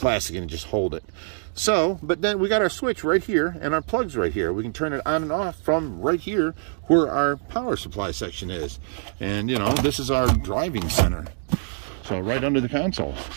and just hold it. So, but then we got our switch right here and our plugs right here. We can turn it on and off from right here where our power supply section is. And, you know, this is our driving center. So right under the console.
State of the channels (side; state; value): left; silent; digital silence